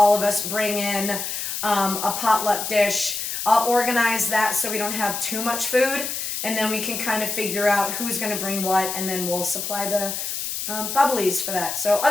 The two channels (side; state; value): left; noise; hiss, 4 dB below the sound